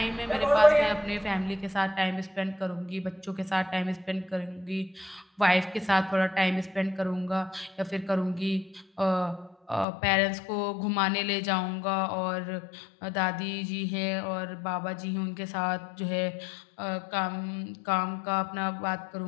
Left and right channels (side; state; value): right; drops out; at 9.9 s